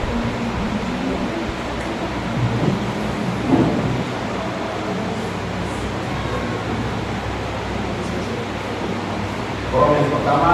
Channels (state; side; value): identical; both; correlation 1.00